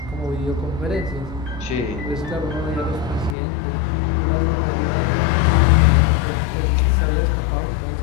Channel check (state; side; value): drops out; right; at 3.4 s